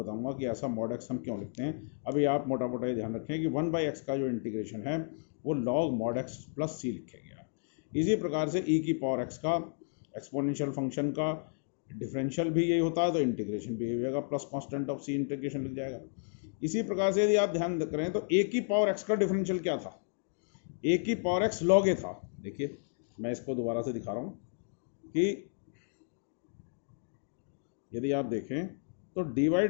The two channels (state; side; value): silent; right; digital silence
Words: कि ऐसा mod x हम क्यों लिखते हैं। अभी आप मोटा मोटा ये ध्यान रखें कि 1/x का जो इंटीग्रेशन है वो log mod x plus c लिखा गया। इसी प्रकार से e की पावर x का एक्सपोनेंशियल फंक्शन का डिफरेंशियल भी यही होता है, तो इंटीग्रेशन भी यही होगा, plus constant of c integration लिख जाएगा। इसी प्रकार से यदि आप ध्यान करें तो a की पावर x का डिफरेंशियल क्या था, a की पावर x log a था। देखिए मैं इसको दोबारा से दिखा रहा हूँ कि यदि आप देखें तो dy